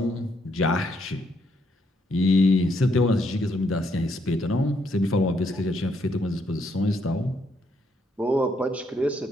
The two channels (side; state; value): both; normal; correlation 0.74